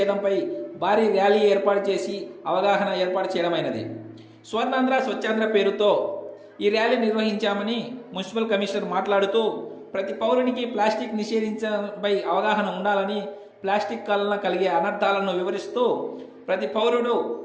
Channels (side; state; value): both; identical; correlation 1.00